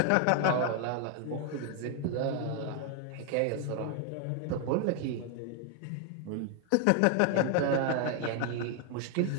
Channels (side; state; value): both; different; correlation 0.01